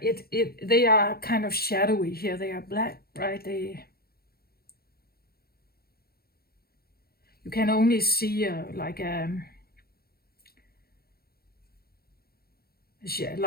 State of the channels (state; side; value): late; right; 0.45 ms